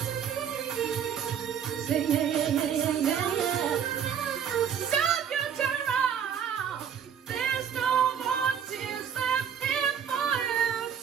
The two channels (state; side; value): quieter; left; 8.3 dB